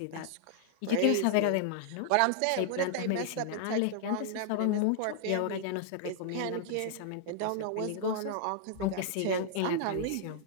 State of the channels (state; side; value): different; both; correlation -0.01